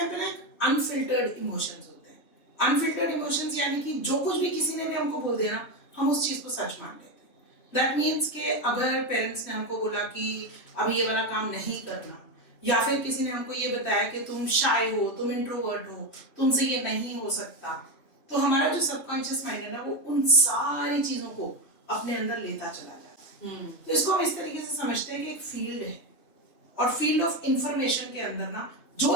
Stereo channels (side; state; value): right; late; 3.2 ms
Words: पे ना एक अनफिल्टर्ड इमोशंस होते हैं। अनफिल्टर्ड इमोशंस यानी कि जो कुछ भी किसी ने भी हमको बोल दिया ना, हम उस चीज को सच मान लेते हैं। दैट मीन्स कि अगर पेरेंट्स ने हमको बोला कि अभी ये वाला काम नहीं करना, या फिर किसी ने हमको ये बताया कि तुम शाय हो, तुम इंट्रोवर्ट हो, तुमसे ये नहीं हो सकता, तो हमारा जो सबकॉन्शियस माइंड है ना, वो उन सारी चीजों को अपने अंदर लेता चला जाता है। तो इसको हम इस तरीके से समझते हैं कि एक फील्ड है, और फील्ड ऑफ इंफॉर्मेशन के अंदर ना जो